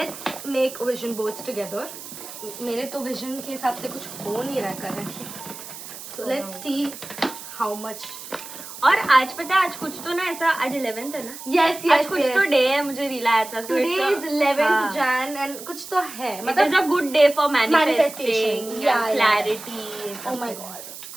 make vision boards together. मेरे तो विजन के हिसाब से कुछ हो नहीं रहा currently. So let's see how much. और आज पता है आज कुछ तो ना ऐसा आज 11th है ना. Yes. आज कुछ तो डे है मुझे रील आया था. Today is 11th Jan and कुछ तो है. It is a good day for manifesting. Yeah, clarity. Oh my god,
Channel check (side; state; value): right; noise; hiss, 13 dB below the sound